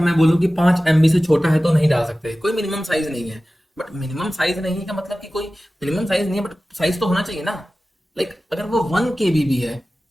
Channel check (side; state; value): both; normal; correlation 0.96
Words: बोलूं कि 5 MB से छोटा है तो नहीं डाल सकते, कोई मिनिमम साइज नहीं है। बट मिनिमम साइज नहीं का मतलब कि कोई मिनिमम साइज नहीं है, बट साइज तो होना चाहिए ना। लाइक अगर वो 1 KB भी है